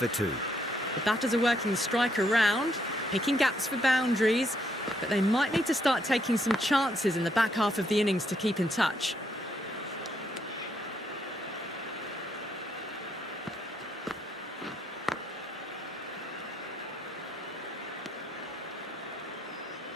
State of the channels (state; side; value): normal; both; correlation 0.74